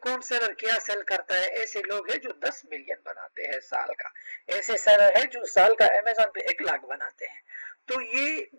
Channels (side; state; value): both; inverted; correlation -1.00